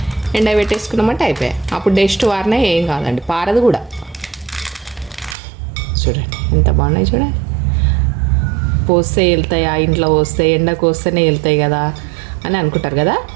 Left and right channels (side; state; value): left; drops out; at 5.4 s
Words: ఎండ పెట్టేసుకున్నామంటే అయిపోయాయి. అప్పుడు డస్ట్ వారినా ఏం కాదండి, పారదు కూడా. చూడండి ఎంత బాగున్నాయి చూడండి. పోస్తే వెళ్తాయా, ఇంట్లో పోస్తే ఎండకు వస్తేనే వెళ్తాయి కదా అని అనుకుంటారు కదా.